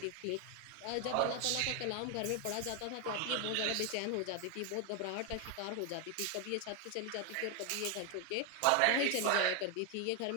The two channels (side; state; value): both; different; correlation 0.01